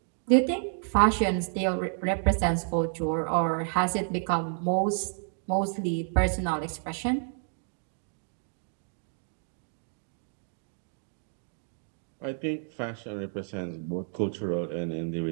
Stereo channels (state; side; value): silent; left; 57 dB below the other